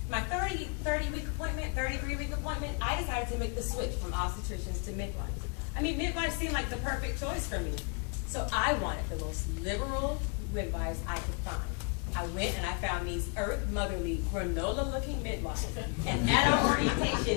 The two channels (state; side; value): quieter; right; 36.7 dB